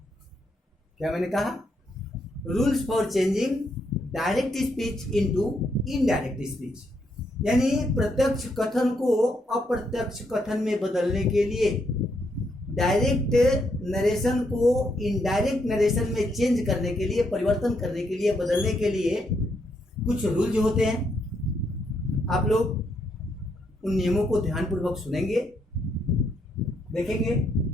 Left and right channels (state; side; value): normal; both; correlation 0.76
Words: क्या मैंने कहा? Rules for changing direct speech into indirect speech, यानी प्रत्यक्ष कथन को अप्रत्यक्ष कथन में बदलने के लिए, डायरेक्ट नरेशन को इनडायरेक्ट नरेशन में चेंज करने के लिए, परिवर्तन करने के लिए, बदलने के लिए कुछ रूल्स होते हैं। आप लोग उन नियमों को ध्यानपूर्वक सुनेंगे, देखेंगे।